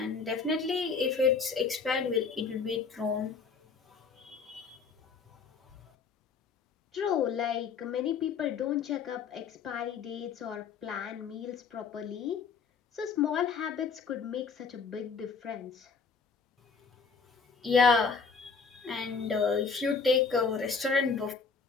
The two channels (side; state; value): right; quieter; 5.3 dB